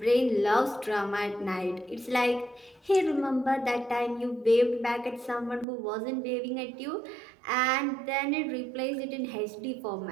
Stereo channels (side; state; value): left; drops out; at 5.7 s